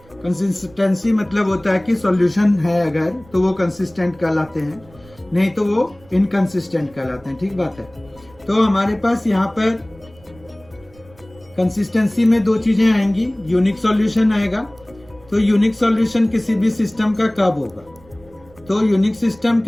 कंसिस्टेंसी मतलब होता है कि सॉल्यूशन है अगर तो वो कंसिस्टेंट कहलाते हैं, नहीं तो वो इनकंसिस्टेंट कहलाते हैं। ठीक बात है। तो हमारे पास यहाँ पर कंसिस्टेंसी में दो चीजें आएंगी, यूनिक सॉल्यूशन आएगा। तो यूनिक सॉल्यूशन किसी भी सिस्टम का कब होगा, तो यूनिक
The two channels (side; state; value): right; noise; rumble, 26 dB below the sound